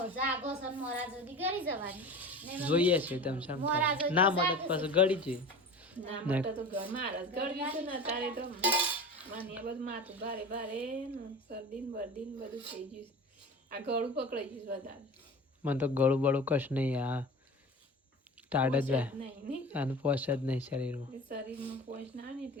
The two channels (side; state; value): both; normal; correlation 0.34